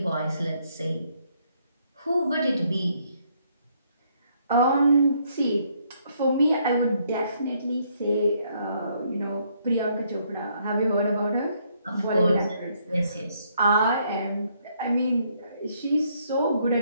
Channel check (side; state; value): both; inverted; correlation -0.70